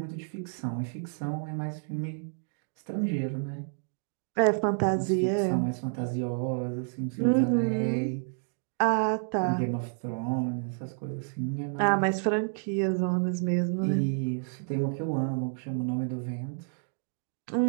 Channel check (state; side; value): silent; left; digital silence